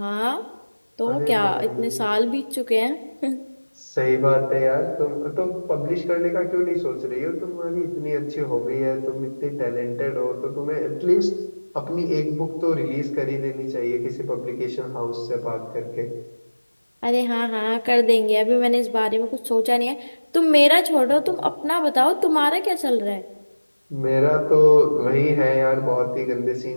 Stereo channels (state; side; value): inverted; both; correlation -1.00